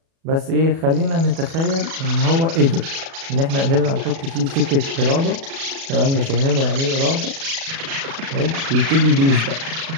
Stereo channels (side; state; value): left; late; 36 ms